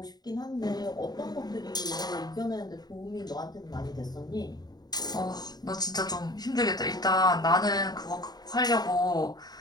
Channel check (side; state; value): right; late; 0.19 ms